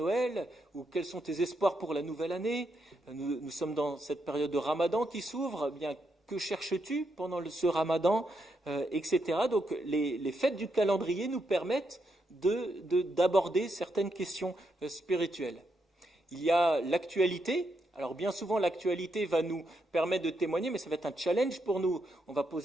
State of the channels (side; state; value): both; normal; correlation 0.80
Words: ? Ou quels sont tes espoirs pour la nouvelle année ? Nous sommes dans cette période de Ramadan qui s'ouvre. Eh bien, que cherches-tu pendant ce Ramadan, etc. Donc les fêtes du calendrier nous permettent d'aborder certaines questions spirituelles. Il y a l'actualité. Alors bien souvent, l'actualité va nous permettre de témoigner, mais ça va être un challenge pour nous. On va